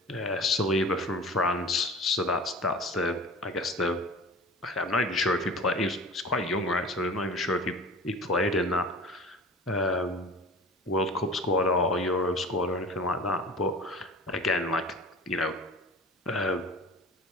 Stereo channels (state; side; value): normal; both; correlation 0.38